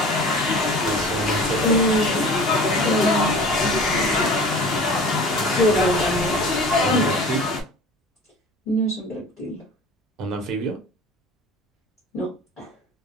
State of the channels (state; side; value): normal; both; correlation 0.41